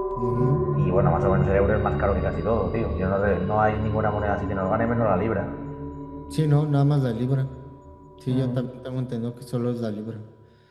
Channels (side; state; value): both; identical; correlation 1.00